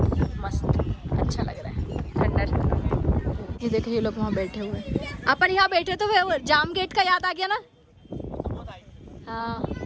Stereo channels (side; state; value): both; identical; correlation 1.00